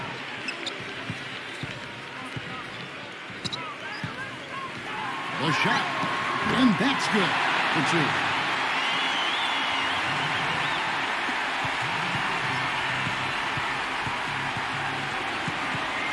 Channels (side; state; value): both; identical; correlation 1.00